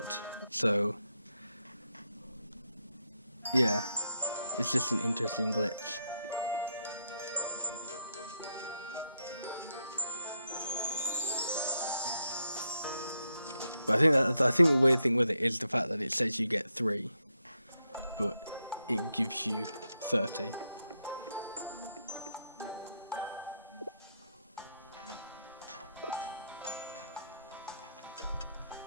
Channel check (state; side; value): inverted; both; correlation -0.80